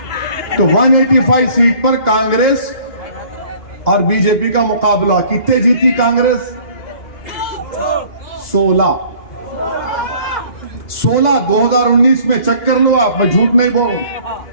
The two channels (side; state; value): right; late; 2.1 ms